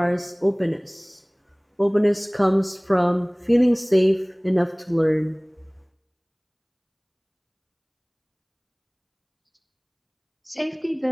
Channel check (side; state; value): both; identical; correlation 1.00